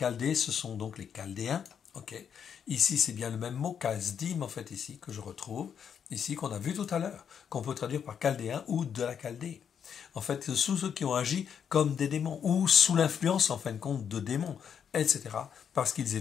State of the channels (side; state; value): right; quieter; 7.8 dB